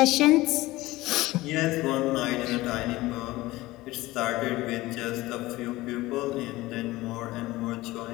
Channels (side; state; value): right; quieter; 18.8 dB